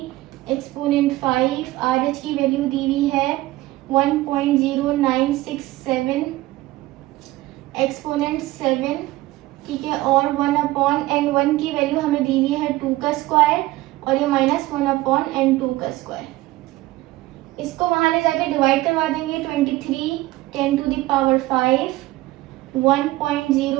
एक्सपोनेंट 5, RH की वैल्यू दी हुई है 1.0967 एक्सपोनेंट 7, ठीक है, और 1/n1 की वैल्यू हमें दी हुई है 2 का स्क्वायर और ये -1/n2 का स्क्वायर। इसको वहां ले जाके डिवाइड करवा देंगे। 23 10⁵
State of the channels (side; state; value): left; quieter; 18.0 dB